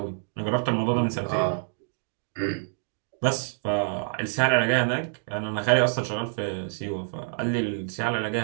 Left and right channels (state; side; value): silent; left; digital silence